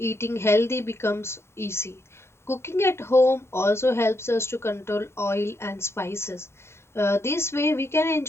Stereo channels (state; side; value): late; right; 0.12 ms